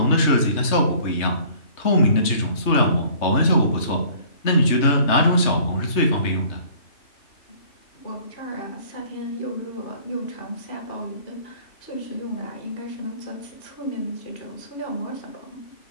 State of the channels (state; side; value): late; right; 3.3 ms